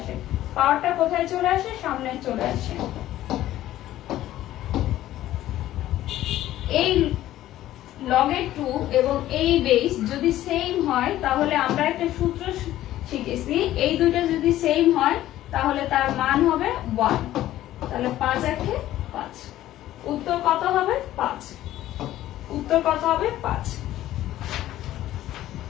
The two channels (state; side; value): quieter; right; 13.9 dB